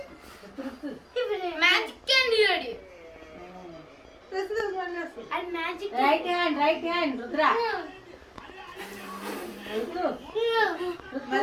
మ్యాజిక్ అండి రెడీ అది magic. Right hand Rudra.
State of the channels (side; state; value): both; identical; correlation 1.00